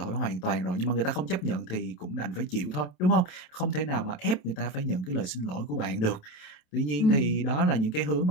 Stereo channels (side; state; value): right; late; 27 ms